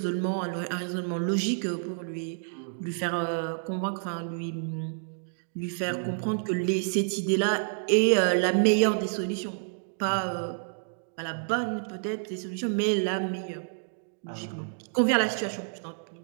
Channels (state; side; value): silent; left; digital silence